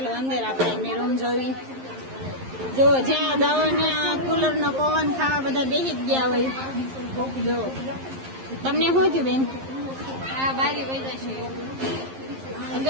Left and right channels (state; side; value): late; left; 11 ms